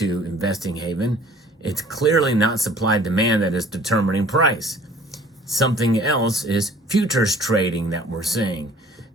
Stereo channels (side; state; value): both; normal; correlation 0.52